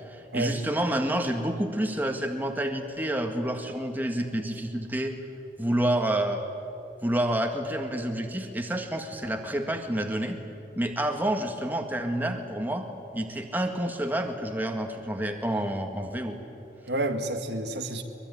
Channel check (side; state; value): both; normal; correlation 0.71